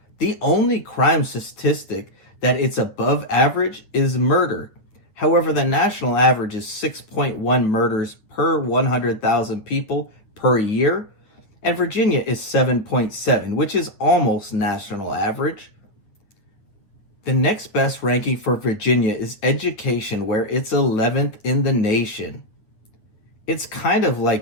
The only crime statistic that it's above average is murder. However, the national average is 6.1 murders per 100,000 people per year, and Virginia is 7.7, which is almost national average. The next best ranking for Virginia is education, where it's 11th in the nation. It's kind of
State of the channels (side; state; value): right; late; 8.9 ms